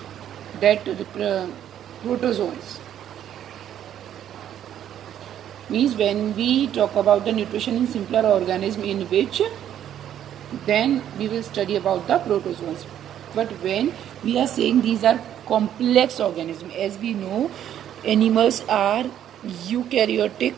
that protozoans. Means when we talk about the nutrition in simpler organism, in which then we will study about the protozoans. But when we are saying these are complex organisms, as we know, animals are eukaryotic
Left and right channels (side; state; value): left; quieter; 10.5 dB